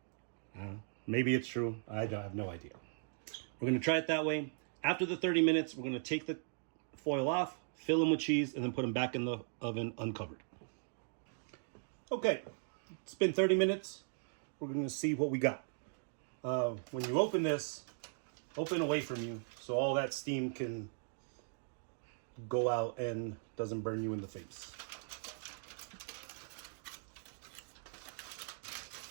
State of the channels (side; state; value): left; silent; digital silence